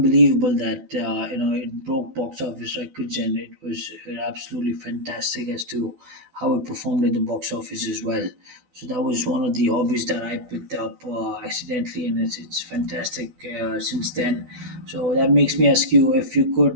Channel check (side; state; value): left; late; 12 ms